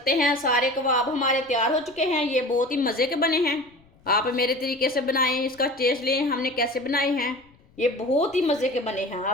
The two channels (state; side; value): noise; left; rumble, 30 dB below the sound